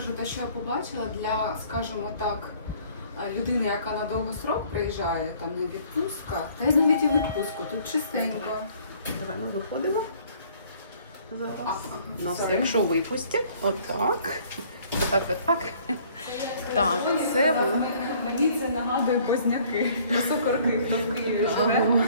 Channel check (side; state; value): both; inverted; correlation -0.57